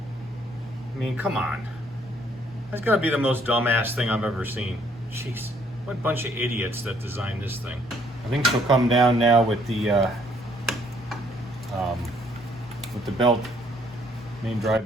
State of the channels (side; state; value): both; normal; correlation 0.65